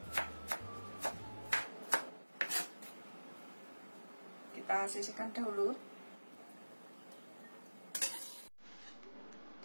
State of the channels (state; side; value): inverted; both; correlation -1.00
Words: Kita sisihkan dahulu.